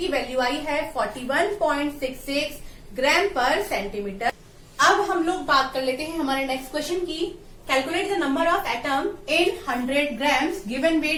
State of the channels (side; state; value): both; identical; correlation 1.00